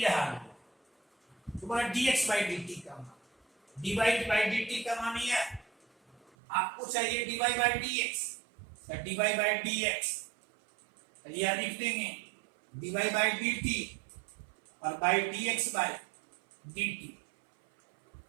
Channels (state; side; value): drops out; left; at 6.3 s